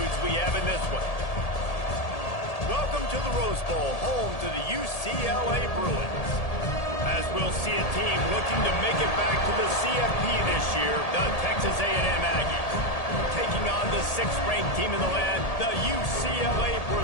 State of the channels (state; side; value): late; right; 1.8 ms